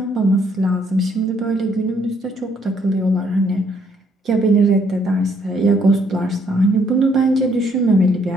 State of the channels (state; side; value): normal; both; correlation 0.68